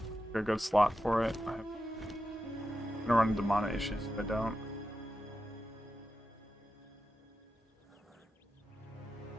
Got a good slot for it. I'm gonna run into mana issues if I don't.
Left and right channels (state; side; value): normal; both; correlation 0.90